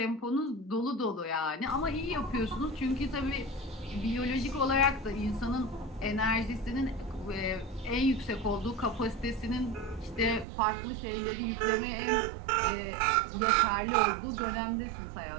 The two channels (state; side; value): drops out; left; at 10.5 s